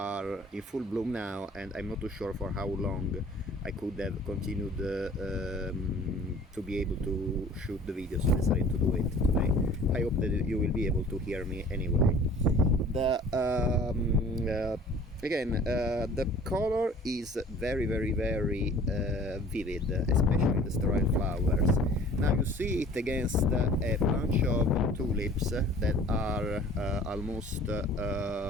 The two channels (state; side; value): normal; both; correlation 0.48